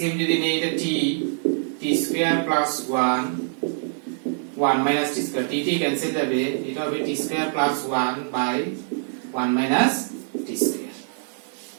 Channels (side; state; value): left; silent; 62 dB below the other